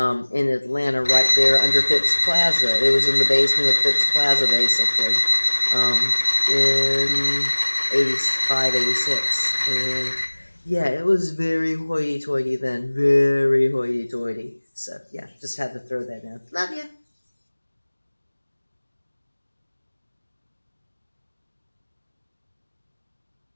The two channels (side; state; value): both; inverted; correlation -1.00